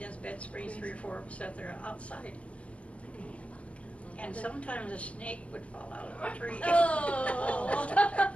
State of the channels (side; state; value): right; late; 0.063 ms